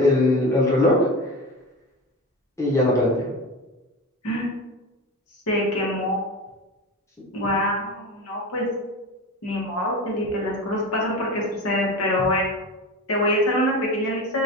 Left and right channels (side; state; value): both; normal; correlation 0.27